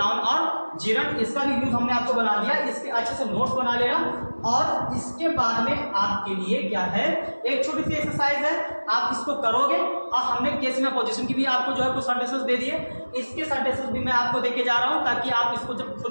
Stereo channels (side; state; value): both; inverted; correlation -1.00